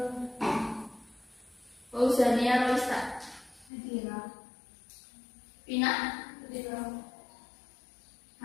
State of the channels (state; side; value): drops out; right; at 3.7 s